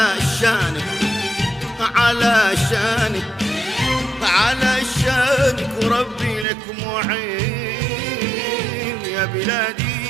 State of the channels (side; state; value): left; drops out; at 6.5 s